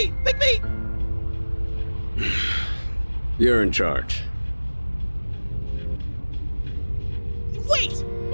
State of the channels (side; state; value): both; inverted; correlation -1.00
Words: me! You're in charge. Wait!